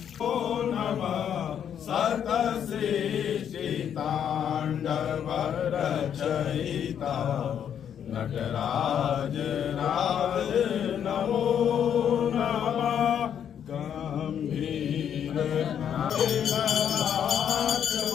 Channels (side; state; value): right; quieter; 8.9 dB